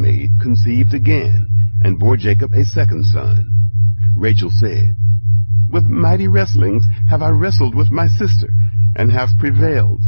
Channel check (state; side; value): inverted; both; correlation -1.00